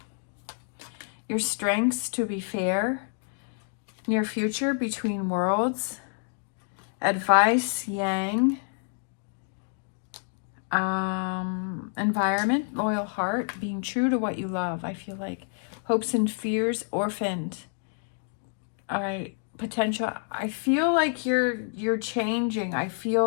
Your strengths, to be fair. Near future, between worlds. Advice, Yang. Environment, loyal heart. Being true to what you love. I feel like hopes and fears, orphaned. All right. Potential. I feel like you're changing. I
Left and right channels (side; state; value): right; silent; 59 dB below the other